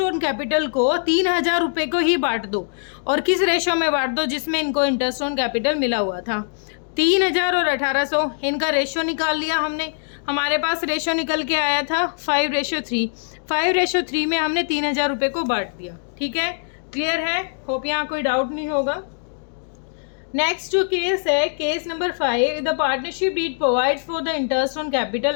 ऑन कैपिटल को 3,000 रुपये को ही बांट दो। और किस रेशो में बांट दो, जिसमें इनको इंटरेस्ट ऑन कैपिटल मिला हुआ था। 3,000 और 1800, इनका रेशो निकाल लिया हमने। हमारे पास रेशो निकल के आया था 5:3। 5:3 में हमने 3,000 रुपये को बांट दिया। ठीक है, क्लियर है? होप यहाँ कोई डाउट नहीं होगा। नेक्स्ट जो केस है, case number 5, the partnership deed provides for the interest on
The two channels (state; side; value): silent; right; digital silence